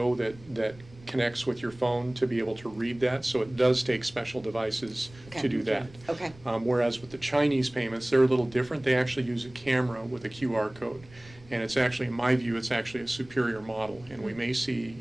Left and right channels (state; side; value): noise; right; rumble, 23 dB below the sound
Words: that connects with your phone to be able to read that. So it does take special devices Okay. to do that. Okay. Whereas with the Chinese payments, they're a little different. They actually use a camera with a QR code. And it's actually, in my view, it's actually a superior model. And we may see